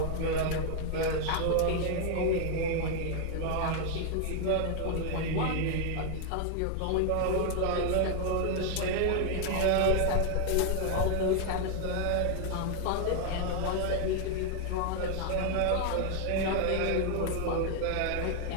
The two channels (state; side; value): different; both; correlation 0.00